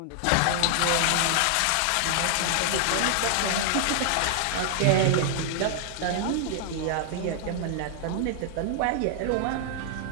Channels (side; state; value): both; different; correlation 0.00